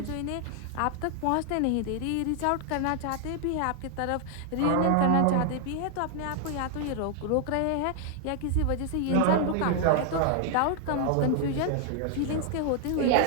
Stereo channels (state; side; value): different; both; correlation 0.00